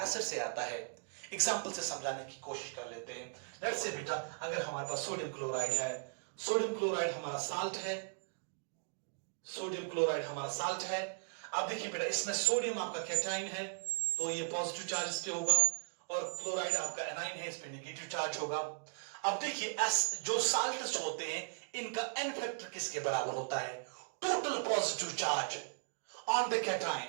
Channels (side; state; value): left; silent; digital silence